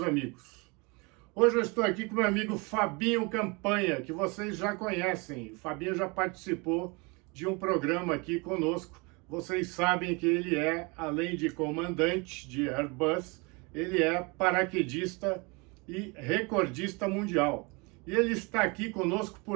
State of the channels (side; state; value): left; quieter; 28.8 dB